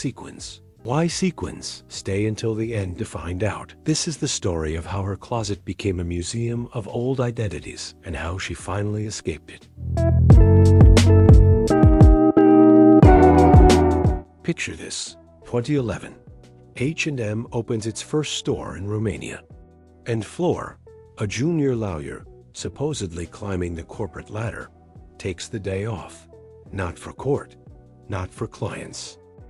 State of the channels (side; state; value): both; identical; correlation 1.00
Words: Why sequins? Stay until the end to find out. This is the story of how her closet became a museum of old identities and how she finally escaped it. Picture this, 2011. H&M opens its first store in Romania. And Fleur, a junior lawyer, supposedly climbing the corporate ladder, takes the day off. Not for court, not for clients,